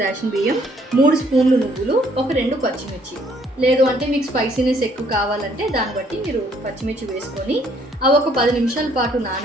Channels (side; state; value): both; normal; correlation 0.64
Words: రేషన్ బియ్యం, 3 స్పూన్లు నువ్వులు, ఒక 2 పచ్చిమిర్చి. లేదు అంటే మీకు స్పైసీనెస్ ఎక్కువ కావాలంటే దాన్ని బట్టి మీరు పచ్చిమిర్చి వేసుకొని అవి ఒక 10 నిమిషాల పాటు